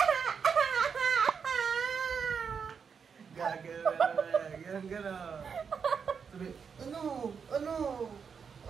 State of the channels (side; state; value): left; quieter; 6.3 dB